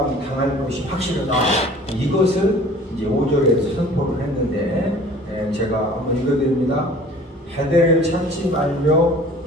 것이 확실하다, 이것을 이제 5절에서 선포를 했는데, 제가 한번 읽어드립니다. 베델을 찾지 말며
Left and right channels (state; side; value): normal; both; correlation 0.47